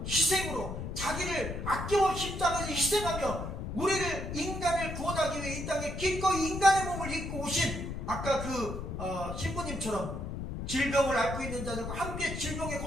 희생으로, 자기를 아낌없이 십자가에서 희생하며 우리를, 인간을 구원하기 위해 이 땅에 기꺼이 인간의 몸을 입고 오신, 아까 그 신부님처럼 질병을 앓고 있는 자들과 함께 질병의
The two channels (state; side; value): noise; left; rumble, 6 dB below the sound